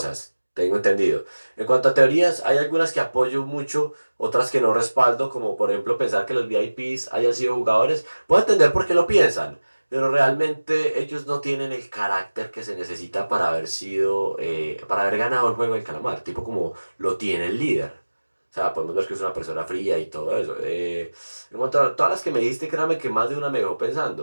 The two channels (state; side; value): inverted; both; correlation -1.00